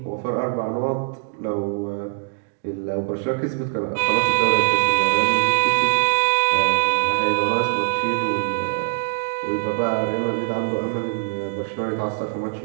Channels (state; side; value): silent; left; digital silence